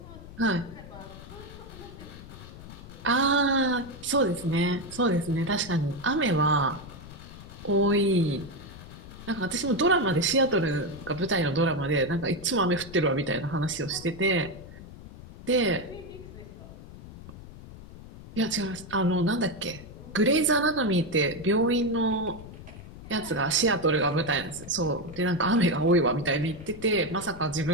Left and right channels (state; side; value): noise; left; rumble, 15 dB below the sound